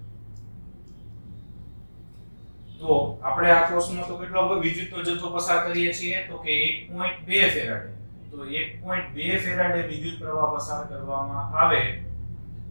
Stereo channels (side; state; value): both; inverted; correlation -1.00